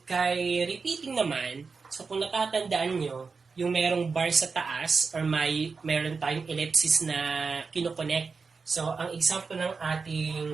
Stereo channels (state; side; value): quieter; left; 4.8 dB